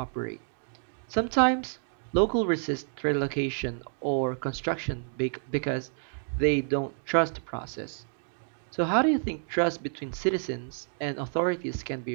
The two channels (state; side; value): silent; left; digital silence